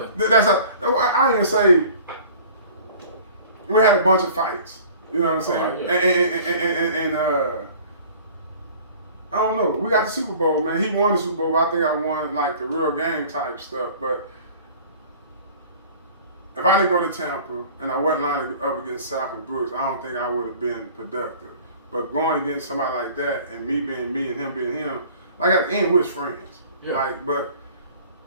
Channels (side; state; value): both; inverted; correlation -0.47